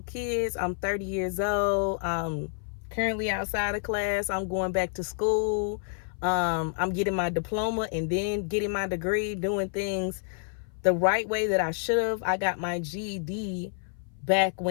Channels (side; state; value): right; silent; 56 dB below the other